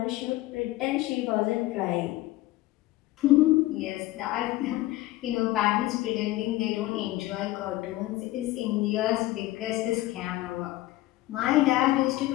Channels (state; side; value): quieter; right; 17.2 dB